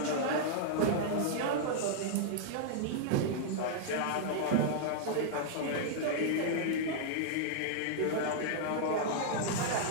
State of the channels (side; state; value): both; different; correlation -0.01